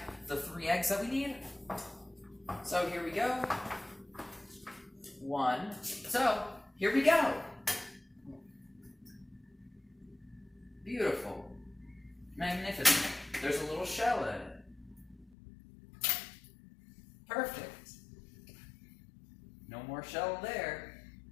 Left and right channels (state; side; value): drops out; right; at 15.3 s